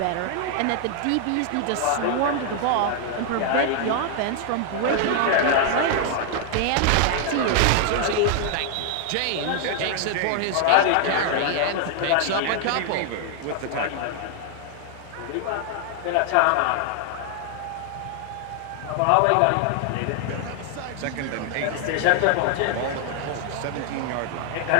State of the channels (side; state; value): both; different; correlation 0.00